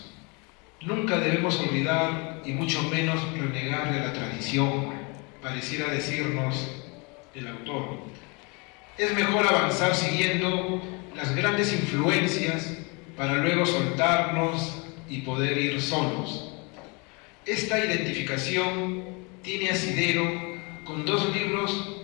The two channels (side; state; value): right; quieter; 30.6 dB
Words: Nunca debemos olvidar y mucho menos renegar de la tradición, pareciera decirnos el autor. es mejor avanzar siguiendo las grandes influencias para luego soltarnos y poder ir solos. Esta identificación tiene asidero con dos